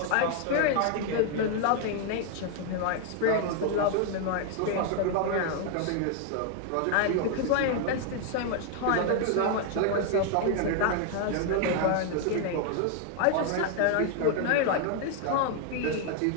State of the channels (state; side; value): different; both; correlation 0.00